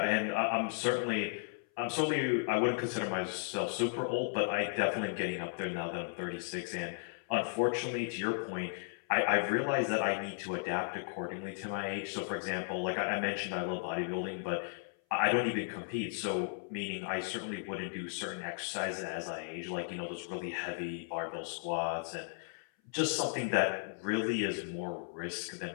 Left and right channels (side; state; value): right; silent; 54 dB below the other